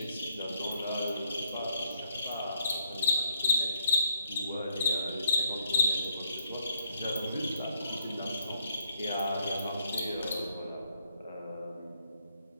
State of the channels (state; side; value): inverted; both; correlation -0.67